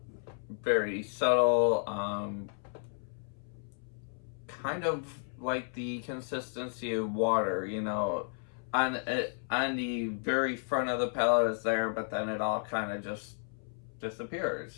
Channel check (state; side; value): silent; right; 56 dB below the other